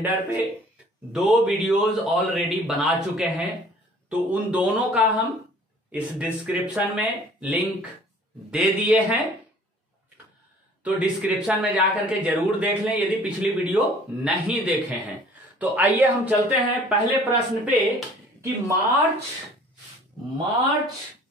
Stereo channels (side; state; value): both; normal; correlation 0.52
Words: पे 2 वीडियोस ऑलरेडी बना चुके हैं, तो उन दोनों का हम इस डिस्क्रिप्शन में लिंक दे दिए हैं, तो डिस्क्रिप्शन में जाकर के जरूर देख लें यदि पिछली वीडियो नहीं देखे हैं। तो आइए हम चलते हैं पहले प्रश्न पे कि मार्च